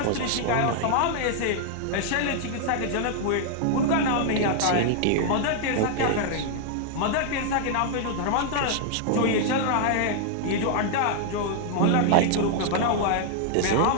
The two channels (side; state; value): both; different; correlation 0.00